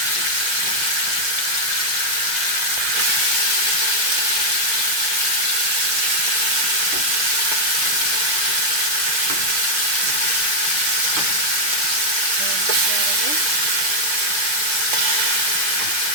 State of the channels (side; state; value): left; late; 6.3 ms